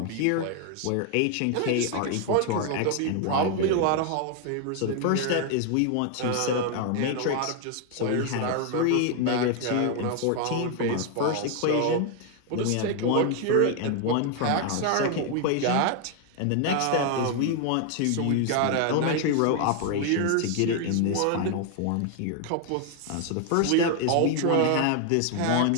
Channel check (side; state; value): both; different; correlation 0.01